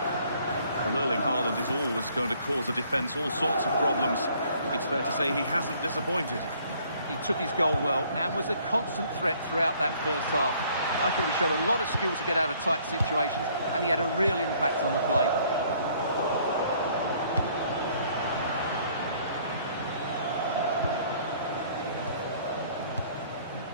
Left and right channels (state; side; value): inverted; both; correlation -0.61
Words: Well, Erling Haaland is always going to cause a defence all sorts of problems. I think it's fair to say he hasn't disappointed. He took his goal well and was a constant threat throughout that first half. I thought he showed a lot of skill to get out of tight situations, and he had a real impact on the play.